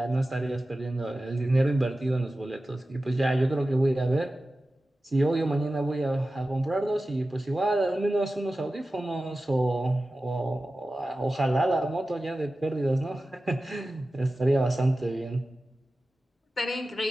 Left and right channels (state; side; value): normal; both; correlation 0.95